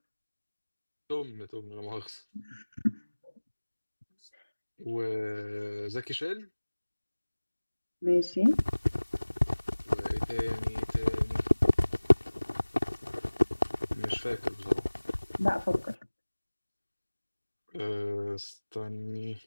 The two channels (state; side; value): inverted; both; correlation -1.00